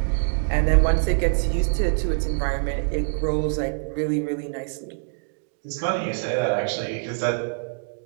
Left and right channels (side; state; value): left; silent; 62 dB below the other